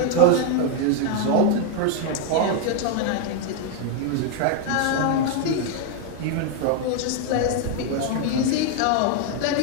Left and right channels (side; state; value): both; different; correlation 0.01